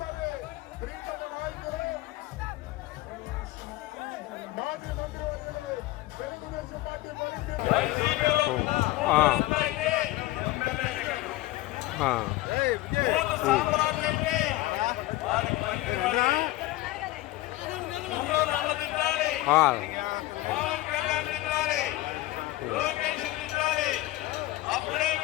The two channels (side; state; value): right; quieter; 17.6 dB